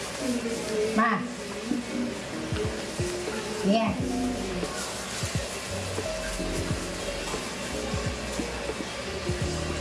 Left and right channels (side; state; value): both; identical; correlation 1.00